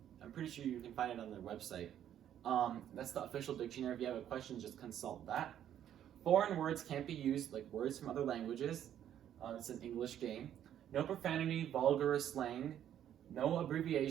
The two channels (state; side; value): quieter; left; 10.5 dB